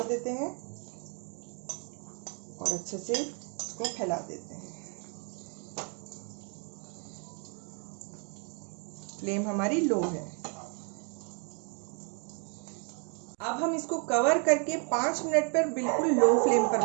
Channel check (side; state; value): left; quieter; 38.6 dB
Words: देते हैं और अच्छे से इसको फैला देते हैं। फ्लेम हमारी लो है। अब हम इसको कवर करके 5 मिनट पर बिल्कुल लो फ्लेम पर